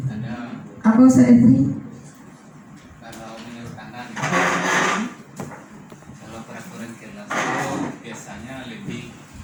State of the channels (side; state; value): both; identical; correlation 1.00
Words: Apa Ustaz Efri? Kalau menurut Anda, kalau peraturan kelas itu biasanya lebih